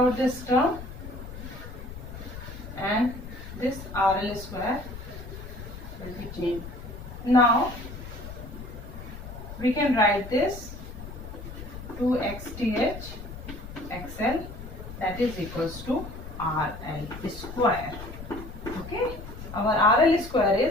this term, and this RL square will be changed. Now we can write this 2 XTH XL, that is equals to RL square. Okay, our RL square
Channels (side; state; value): left; noise; rumble, 11 dB below the sound